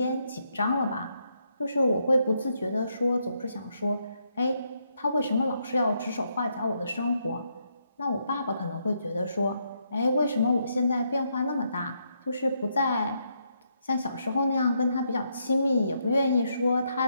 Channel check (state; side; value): inverted; both; correlation -0.77